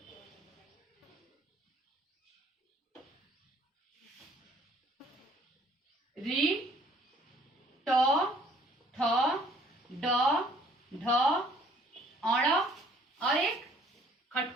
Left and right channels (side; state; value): both; normal; correlation 0.58